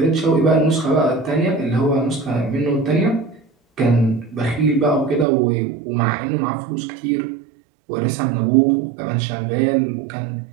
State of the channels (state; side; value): drops out; left; at 5.2 s